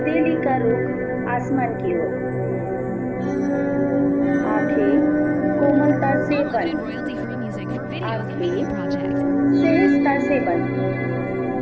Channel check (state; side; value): identical; both; correlation 1.00